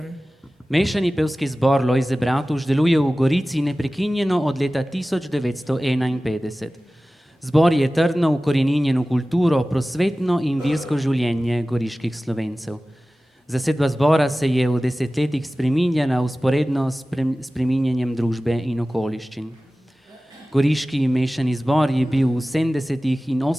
Mešani pevski zbor Lojze Bratuš deluje v Gorici neprekinjeno od leta 1951. Zbor je trdno ukoreninjen v kulturo, prosvetno in versko življenje goriških Slovencev. Zasedba zbora se je v desetletjih spreminjala vzporedno s spreminjanjem družbe in okoliščin. Goriški mešani zbor je bil v 70. in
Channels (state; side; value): normal; both; correlation 0.96